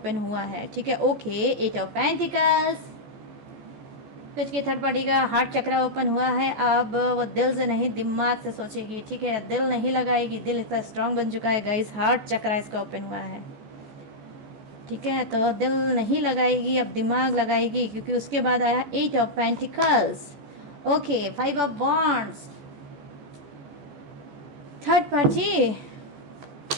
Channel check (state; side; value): late; left; 14 ms